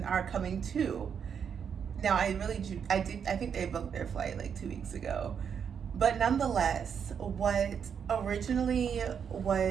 are coming too. Now I think they booked their flight like 2 weeks ago. But nonetheless, what originally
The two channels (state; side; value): quieter; left; 7.3 dB